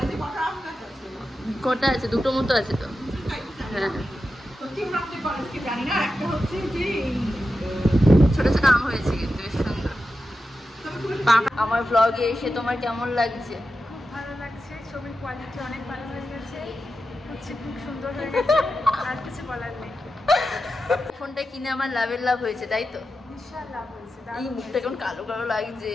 কটা আছে? দুটো মতো আছে তো। হ্যাঁ ছোট ছোট আম হয়েছে কিন্তু বেশ সুন্দর। আমার ব্লগে এসে তোমার কেমন লাগছে? খুব ভালো লাগছে, ছবির কোয়ালিটি অনেক ভালো হয়ে গেছে, হচ্ছে খুব সুন্দর হয়ে গেছে, আর কিছু বলার নেই। ফোনটা কিনে আমার লাভের লাভ হয়েছে তাই তো? বিশাল লাভ হয়েছে। এই মুখটা কেমন কালো কালো লাগছে,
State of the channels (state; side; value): normal; both; correlation 0.90